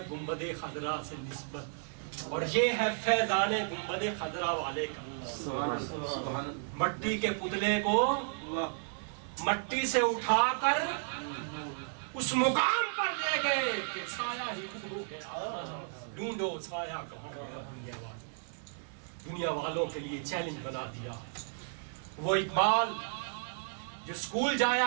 گنبد خضرا سے نسبت اور یہ ہے فیضان گنبد خضرا والے کا۔ مٹی کے پتلے کو مٹی سے اٹھا کر اس مقام پر لے گئے کہ سایہ ہی گم ہو گیا، ڈھونڈو سایہ کہاں گیا۔ دنیا والوں کے لیے چیلنج بنا دیا۔ وہ اقبال جو اسکول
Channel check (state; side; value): silent; left; 55 dB below the other